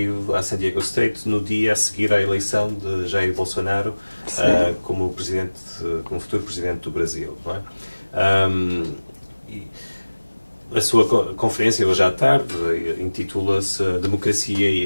à San Diego State no dia a seguir à eleição de Jair Bolsonaro como futuro presidente do Brasil, não é? A sua conferência hoje à tarde intitula-se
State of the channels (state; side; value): inverted; both; correlation -1.00